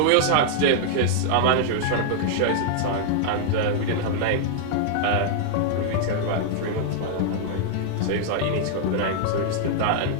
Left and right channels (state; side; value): different; both; correlation -0.01